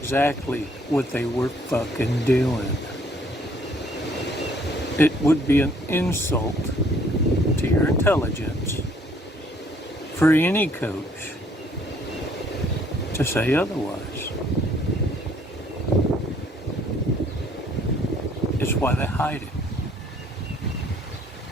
what they were fucking doing. It would be an insult to your intelligence for any coach to say otherwise. It's why they hide it.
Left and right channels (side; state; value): both; normal; correlation 0.62